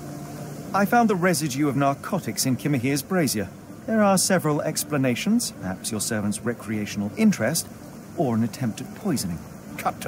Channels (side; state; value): both; identical; correlation 1.00